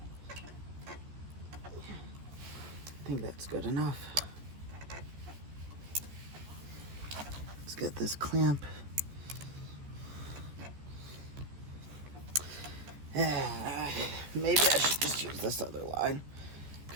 I think that's good enough. Let's get this clamp. Maybe I should just use this other line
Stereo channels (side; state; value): left; late; 14 ms